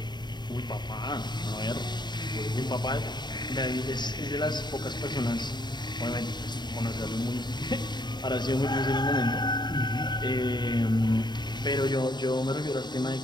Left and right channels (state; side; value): late; right; 0.21 ms